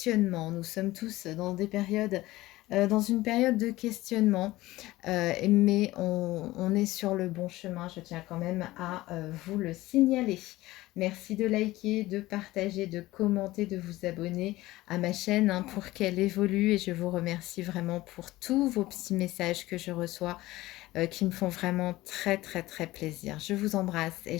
Nous sommes tous dans des périodes, dans une période de questionnement, mais on est sur le bon chemin. Je tiens quand même à vous le signaler. Merci de liker, de partager, de commenter, de vous abonner à ma chaîne hein, pour qu'elle évolue et je vous remercie vraiment pour tous vos petits messages que je reçois qui me font vraiment très très très plaisir. Je vous embrasse et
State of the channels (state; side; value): quieter; right; 17.8 dB